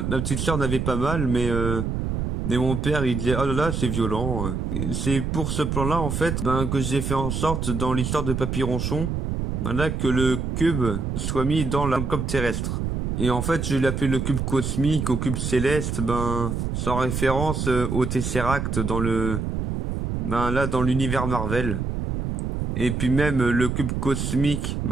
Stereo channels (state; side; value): noise; right; rumble, 2 dB below the sound